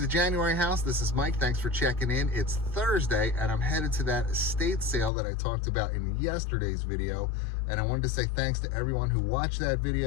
January house. This is Mike. Thanks for checking in. It's Thursday and I'm headed to that estate sale that I talked about in yesterday's video. And I wanted to say thanks to everyone who watched that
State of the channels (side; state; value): right; drops out; at 5.1 s